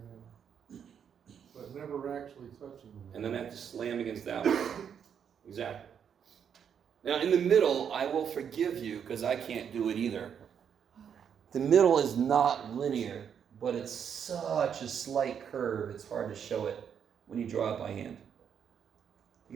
Yeah. But never actually touching them. And then I have to slam against that one. Exactly. Now, in the middle, I will forgive you because I can't do it either. The middle is not linear, but it's such a slight curve, it's hard to show it when you draw it by hand. You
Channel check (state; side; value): quieter; left; 7.9 dB